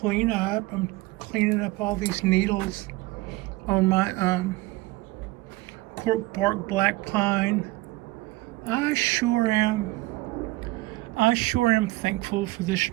I'm cleaning up all these needles on my cork bark black pine. I sure am thankful for this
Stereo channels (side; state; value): left; quieter; 20.6 dB